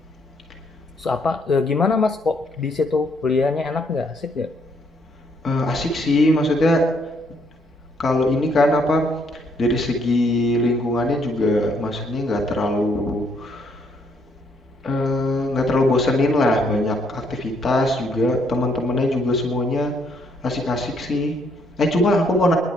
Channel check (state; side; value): normal; both; correlation 0.70